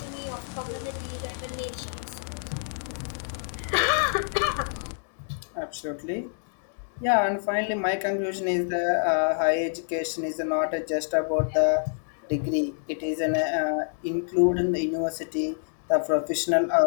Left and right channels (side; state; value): right; silent; digital silence